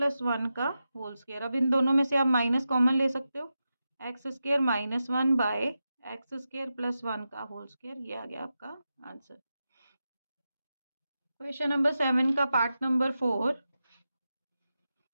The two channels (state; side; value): inverted; both; correlation -0.90